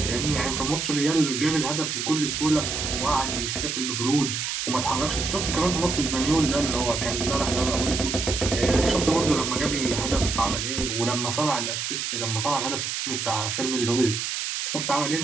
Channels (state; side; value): noise; right; hiss, 2 dB below the sound